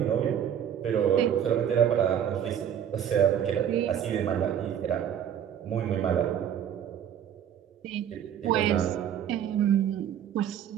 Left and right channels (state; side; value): quieter; left; 9.3 dB